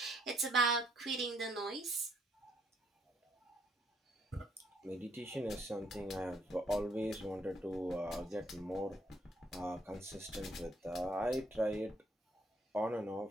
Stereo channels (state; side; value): normal; both; correlation 0.69